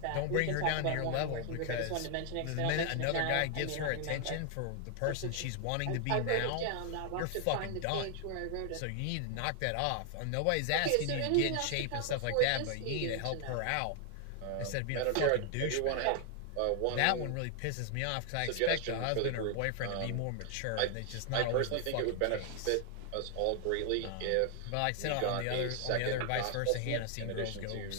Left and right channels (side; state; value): both; different; correlation 0.00